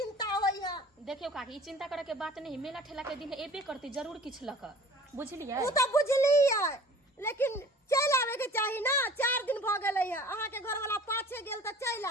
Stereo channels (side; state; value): both; normal; correlation 0.46